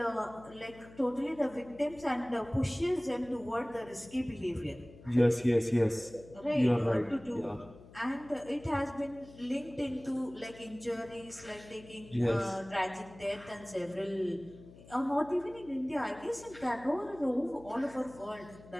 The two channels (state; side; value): noise; left; hum, 20 dB below the sound